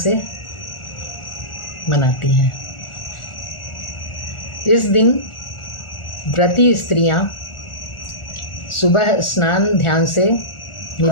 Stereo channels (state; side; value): late; right; 1.4 ms